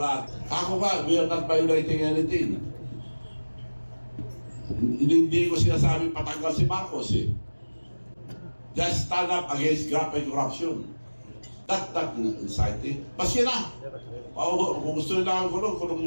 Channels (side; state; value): both; inverted; correlation -1.00